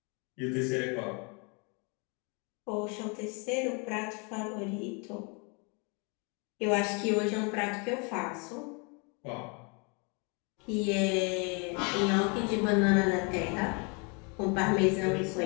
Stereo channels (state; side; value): quieter; right; 33.4 dB